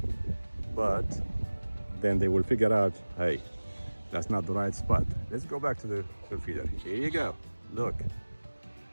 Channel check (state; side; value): inverted; both; correlation -1.00